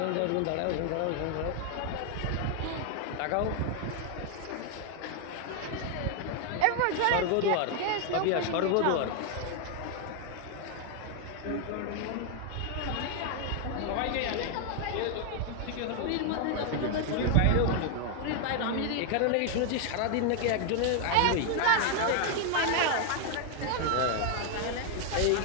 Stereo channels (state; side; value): different; both; correlation 0.00